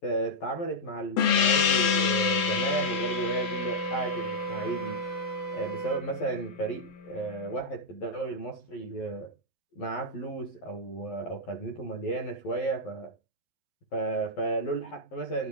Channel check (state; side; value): late; right; 12 ms